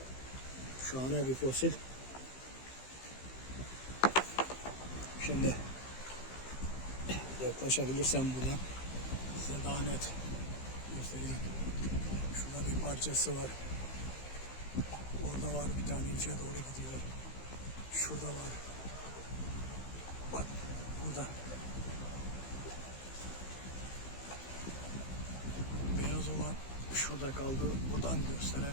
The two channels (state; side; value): late; right; 15 ms